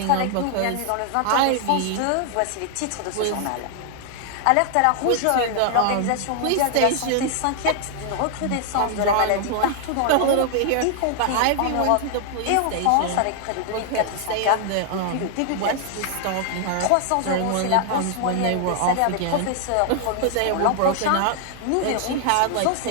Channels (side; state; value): both; different; correlation 0.00